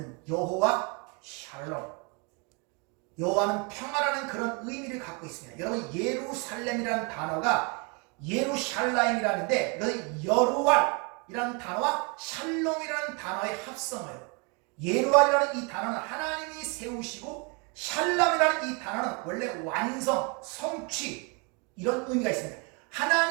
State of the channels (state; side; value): quieter; left; 32.8 dB